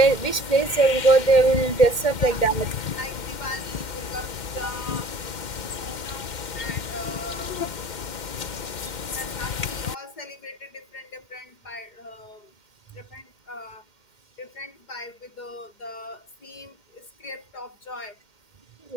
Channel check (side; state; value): right; late; 2.1 ms